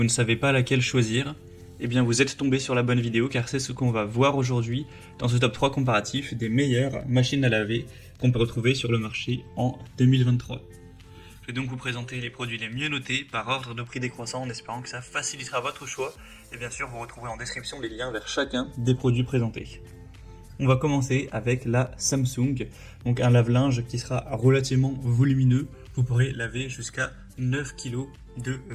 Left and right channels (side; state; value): both; identical; correlation 1.00